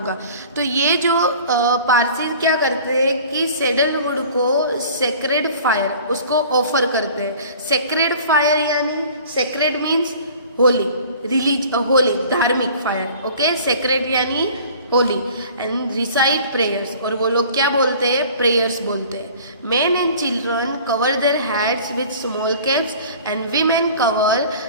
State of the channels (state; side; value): inverted; both; correlation -0.46